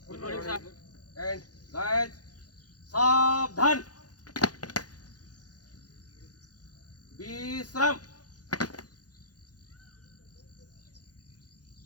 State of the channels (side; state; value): right; late; 0.69 ms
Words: Good morning, sir. And guys, सावधान. विश्राम.